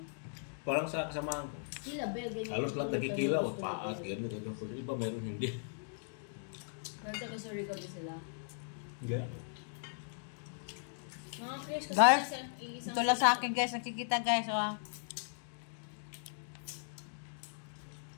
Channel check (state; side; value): silent; right; digital silence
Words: Parang sa kasamahan ko. Sila, be, ganyan. Halos lahat nagkikilaw. Paat, gano'n, gano'n. Pero iba meron hindi. Pero taga-Surigao din sila. Ganyan. Mga curious kasi Guys, isang ito lang sa akin guys, nakikita guys. Oh.